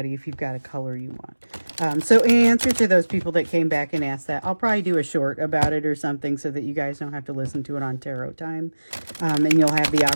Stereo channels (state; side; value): inverted; both; correlation -1.00